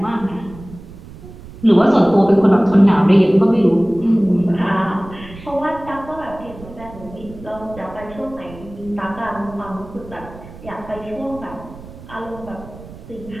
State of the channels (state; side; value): noise; right; rumble, 17 dB below the sound